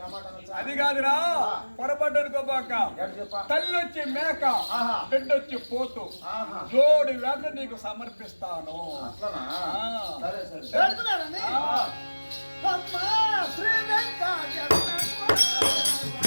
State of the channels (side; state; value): both; inverted; correlation -1.00